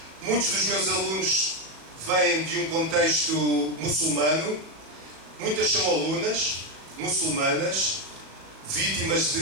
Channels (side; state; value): left; late; 37 ms